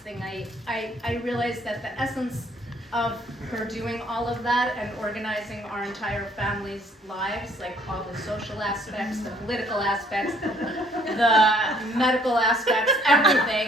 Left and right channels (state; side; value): normal; both; correlation 0.62